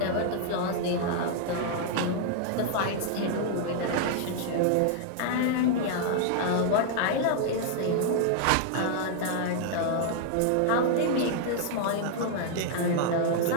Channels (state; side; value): different; both; correlation 0.00